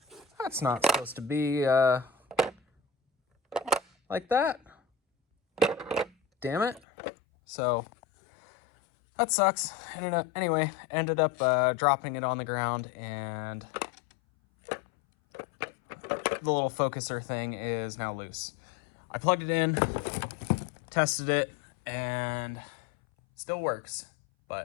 That's not supposed to be like that. Damn it. So that sucks. Anyway, ended up dropping it on the ground, and the little focuser thing is now loose. I plugged it in, tested it, and still works,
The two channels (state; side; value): drops out; right; at 6.8 s